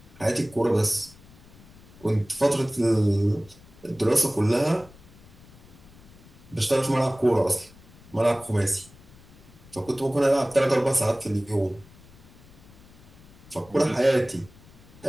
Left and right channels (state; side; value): noise; left; rumble, 23 dB below the sound